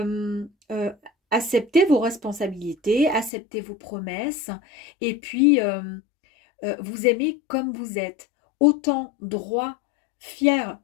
accepter vos responsabilités, accepter vos promesses et puis vous aimer comme vous êtes. Autant droit, fier,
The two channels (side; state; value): right; drops out; at 3.3 s